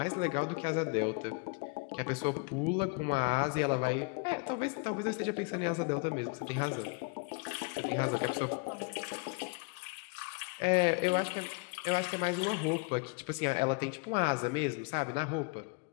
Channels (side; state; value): right; quieter; 31.5 dB